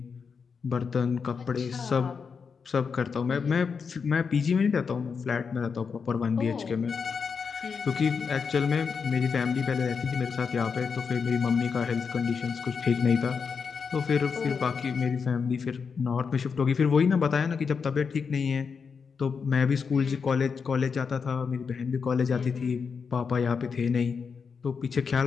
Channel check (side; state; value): right; quieter; 5.8 dB